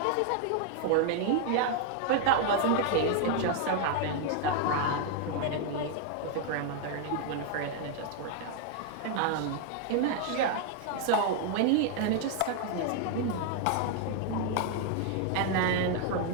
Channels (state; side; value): different; both; correlation 0.00